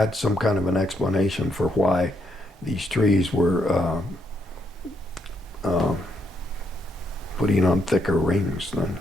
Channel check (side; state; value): both; normal; correlation 0.76